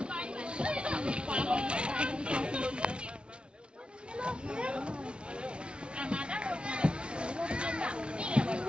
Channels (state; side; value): late; left; 0.057 ms